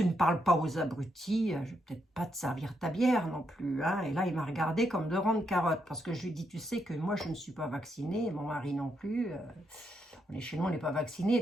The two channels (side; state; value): both; normal; correlation 0.79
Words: ne parles pas aux abrutis, je vais peut-être pas te servir ta bière non plus. Hein. Et là, il m'a regardé comme de rondes carottes, parce que je lui ai dit, tu sais que moi, je ne suis pas vaccinée, mon mari non plus. On est chez nous, on n'est pas vacciné,